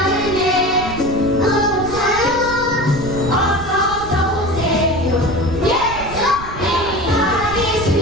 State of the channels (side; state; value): right; noise; rumble, 12 dB below the sound